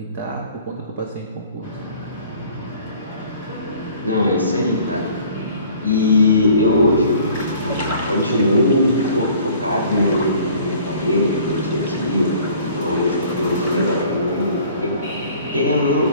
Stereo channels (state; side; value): inverted; both; correlation -0.52